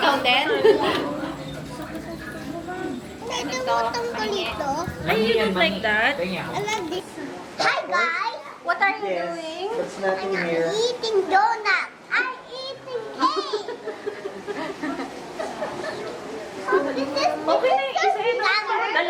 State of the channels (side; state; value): both; identical; correlation 1.00